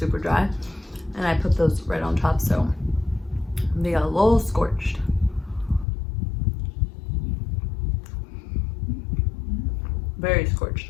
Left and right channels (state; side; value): drops out; right; at 5.9 s